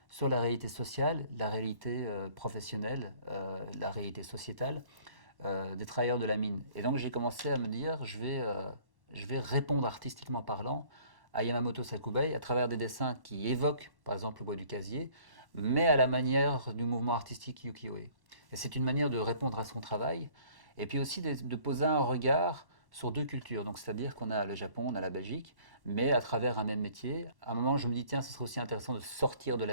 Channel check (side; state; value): left; late; 1.1 ms